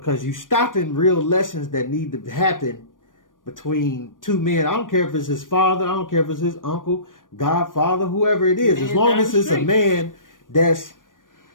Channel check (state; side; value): late; right; 0.89 ms